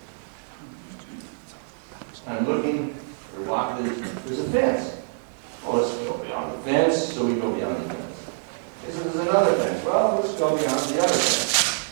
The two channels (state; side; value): silent; left; 61 dB below the other